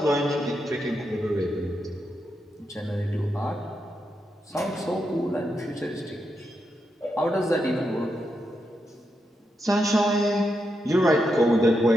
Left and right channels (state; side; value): normal; both; correlation 0.84